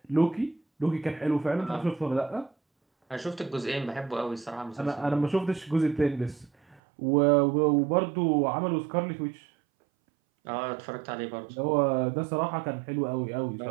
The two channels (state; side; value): drops out; left; at 6.8 s